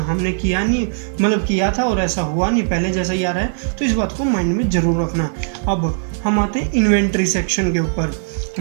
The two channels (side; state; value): left; silent; 67 dB below the other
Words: किया नहीं, मतलब किया था और ऐसा हुआ नहीं, पहले जैसा ही आ रहा है। तो इस बात को माइंड में ज़रूर रखना। अब हम आते हैं इन्वेंट्री सेक्शन के ऊपर।